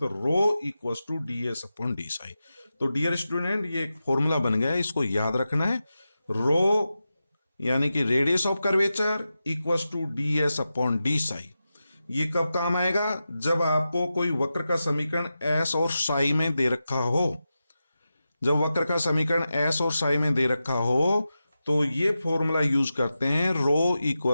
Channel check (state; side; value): inverted; both; correlation -0.91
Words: rho equals to ds upon D psi. तो डियर स्टूडेंट, ये एक फॉर्मूला बन गया है, इसको याद रखना है। रो यानी कि radius of curvature equals to ds upon D psi. ये कब काम आएगा? जब आपको कोई वक्र का समीकरण S और साई में दे रखा हो। जब वक्र का समीकरण S और साई में दे रखा हो तो ये फॉर्मूला यूज करते हैं, rho